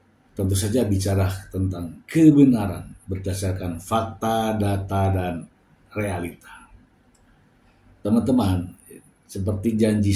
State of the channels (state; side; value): identical; both; correlation 1.00